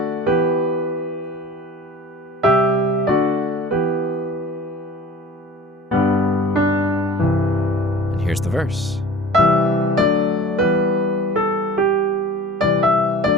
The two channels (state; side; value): normal; both; correlation 0.41